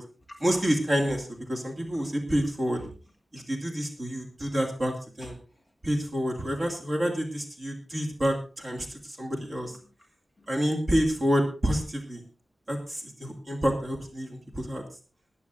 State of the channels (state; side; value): normal; both; correlation 0.95